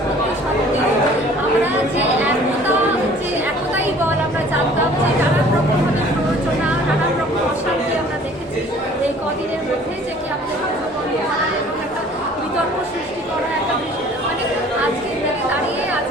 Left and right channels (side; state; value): both; normal; correlation 0.52